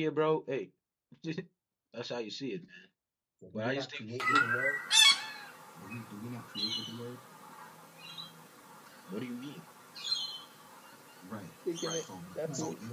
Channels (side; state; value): both; identical; correlation 1.00